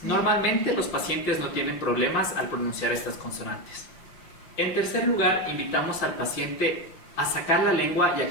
Normalmente los pacientes no tienen problemas al pronunciar estas consonantes. En tercer lugar, invitamos al paciente a sacar la lengua y a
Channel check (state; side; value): late; right; 5.7 ms